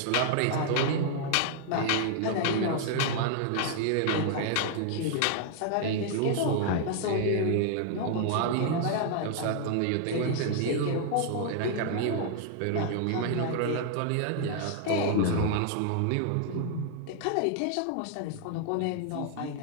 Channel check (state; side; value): different; both; correlation 0.00